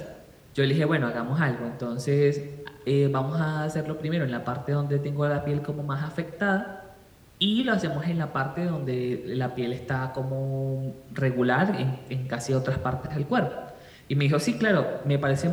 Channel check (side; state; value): both; identical; correlation 1.00